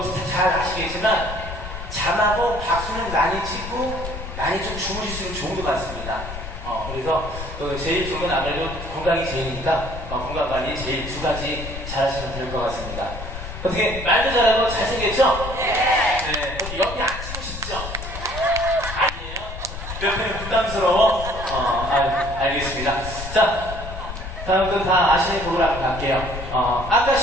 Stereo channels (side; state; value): left; noise; rumble, 9 dB below the sound